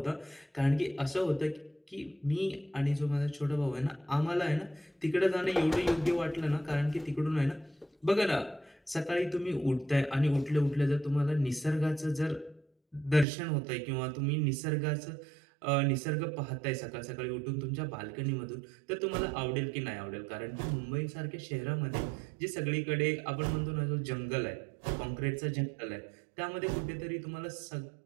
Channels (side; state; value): left; drops out; at 13.2 s